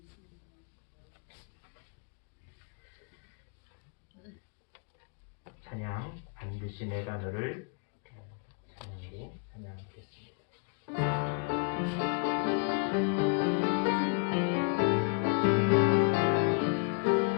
찬양, 반드시 내가 너를 찬양으로 찬양하겠습니다.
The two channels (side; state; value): right; quieter; 37.5 dB